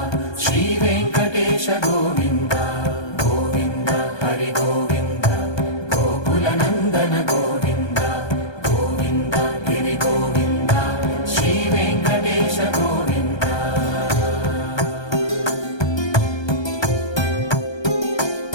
శ్రీ వెంకటేశ గోవింద గోవింద హరి గోవింద గోకుల నందన గోవింద గోవింద గిరి గోవింద శ్రీ వెంకటేశ గోవింద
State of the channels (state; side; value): late; right; 1.2 ms